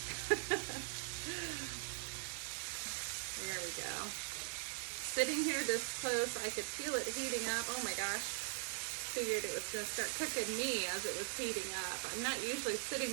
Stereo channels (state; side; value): silent; left; 50 dB below the other